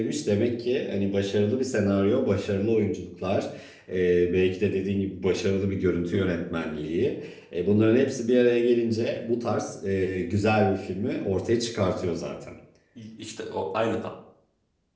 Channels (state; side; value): identical; both; correlation 1.00